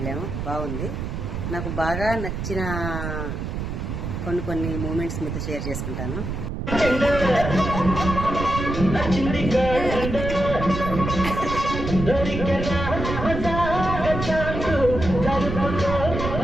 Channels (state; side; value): noise; right; rumble, 4 dB below the sound